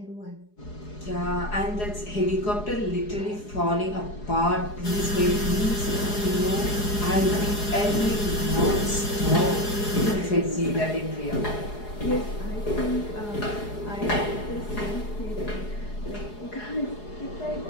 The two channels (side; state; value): right; late; 4.8 ms